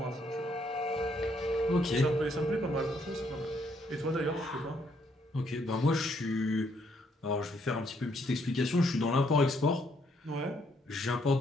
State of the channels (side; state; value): both; normal; correlation 0.71